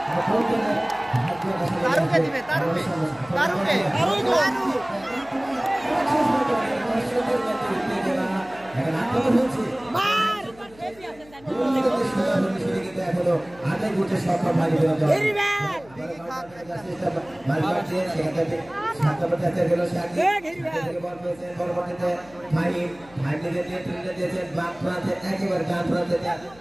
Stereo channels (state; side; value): noise; left; hum, 24 dB below the sound